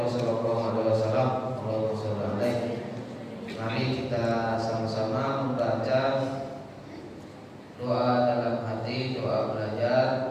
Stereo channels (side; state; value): both; identical; correlation 1.00